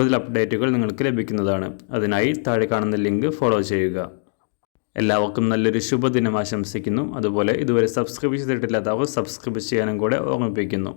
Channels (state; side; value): silent; right; digital silence